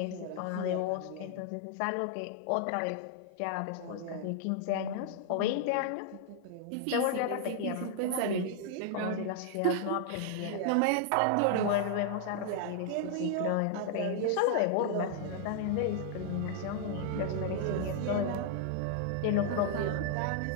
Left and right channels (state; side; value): different; both; correlation -0.01